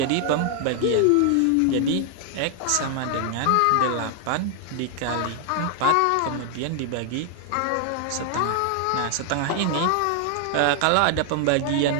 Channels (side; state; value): both; different; correlation 0.00